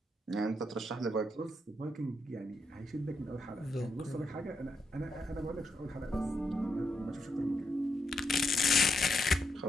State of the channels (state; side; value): normal; both; correlation 0.80